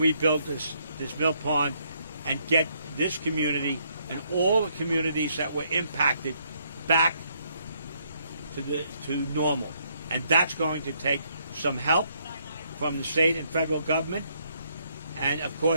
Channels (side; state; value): both; inverted; correlation -0.71